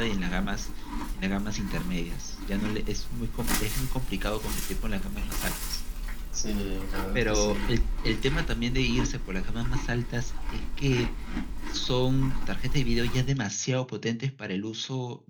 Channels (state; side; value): identical; both; correlation 1.00